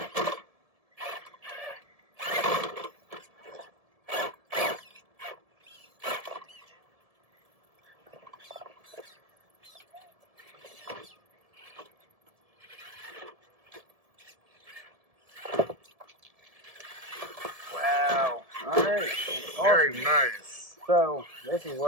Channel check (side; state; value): left; late; 1.7 ms